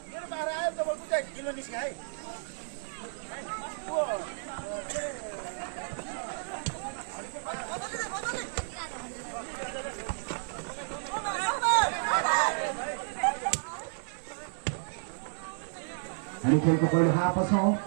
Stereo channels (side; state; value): left; silent; 56 dB below the other